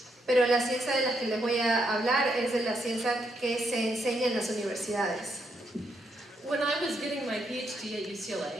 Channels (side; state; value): both; normal; correlation 0.78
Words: Pero la ciencia de la que les voy a hablar es de la ciencia que se enseña en las universidades. When I was getting my PhD at